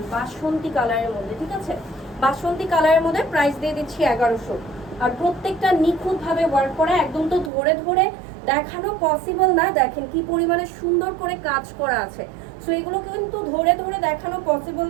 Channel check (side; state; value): left; drops out; at 7.5 s